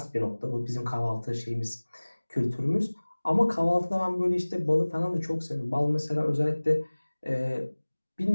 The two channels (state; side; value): inverted; both; correlation -1.00